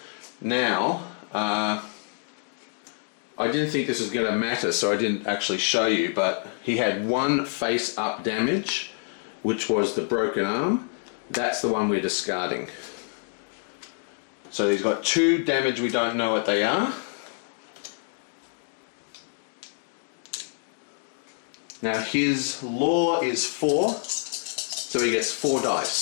Now, I didn't think this was going to matter, so I didn't actually show you, but he had 1 face up damage, which was the broken arm. That's the one we're discarding. So he's got 2 damage, we don't know what they are. Now his law is 4, so he gets 4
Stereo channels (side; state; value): right; silent; 60 dB below the other